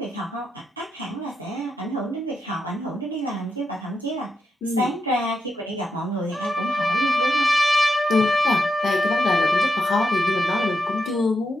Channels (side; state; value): both; normal; correlation 0.85